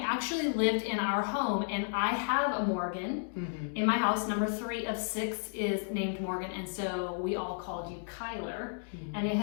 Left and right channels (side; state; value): right; silent; digital silence